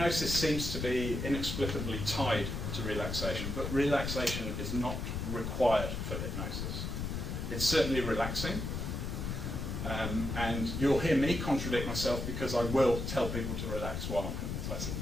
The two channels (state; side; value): noise; left; rumble, 3 dB below the sound